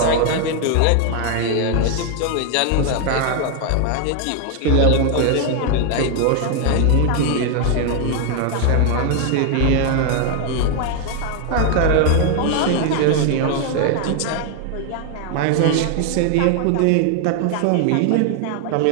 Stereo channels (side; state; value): both; different; correlation 0.00